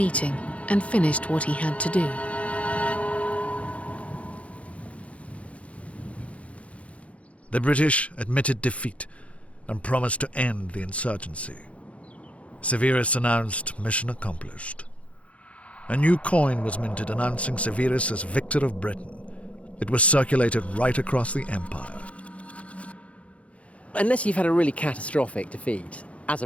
and finished what he had to do. The British admitted defeat and promised to end the insurgency. Severus announced mission accomplished. A new coin was minted announcing Severus as victor of Britain. It was circulated right across the empire. Unless you've had a really catastrophic defeat, as a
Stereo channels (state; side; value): late; right; 0.064 ms